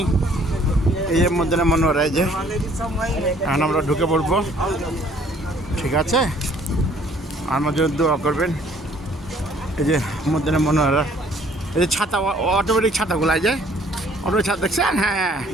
এই যে মদিনা মনোরা, এই যে এখন আমরা ঢুকে পড়বো। ঠিক আছে, আমার জন্য দোয়া করবেন। এই যে মদিনা মনোরা, এই যে ছাতা, অটোমেটিক ছাতাগুলো, এই যে অটোমেটিক ছাতা দেখছেন? হ্যাঁ,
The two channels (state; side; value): normal; both; correlation 0.59